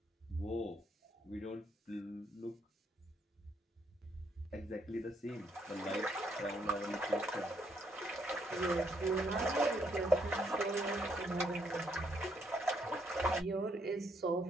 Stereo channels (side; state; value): both; normal; correlation 0.73